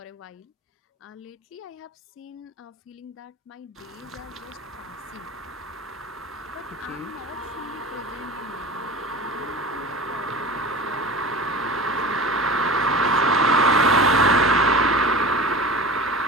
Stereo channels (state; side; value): normal; both; correlation 0.35